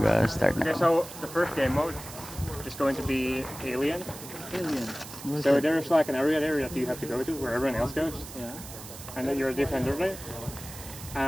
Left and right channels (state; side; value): noise; right; hiss, 13 dB below the sound